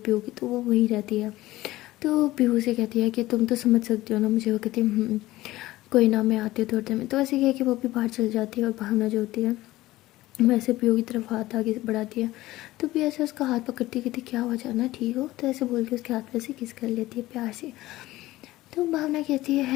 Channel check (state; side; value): quieter; right; 17.2 dB